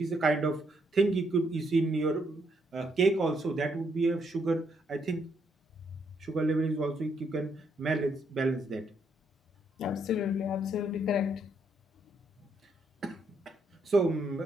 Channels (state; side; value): normal; both; correlation 0.74